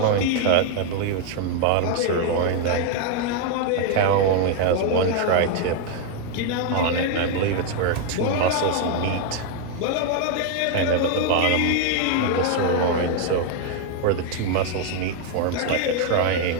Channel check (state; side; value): different; both; correlation 0.00